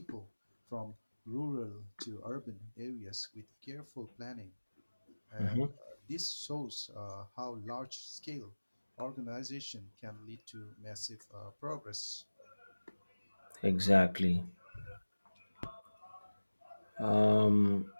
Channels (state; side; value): inverted; both; correlation -1.00